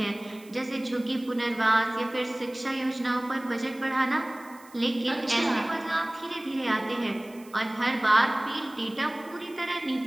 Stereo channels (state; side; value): noise; right; hiss, 24 dB below the sound